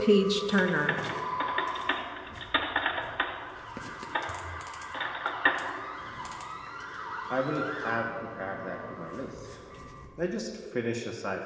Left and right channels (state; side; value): identical; both; correlation 1.00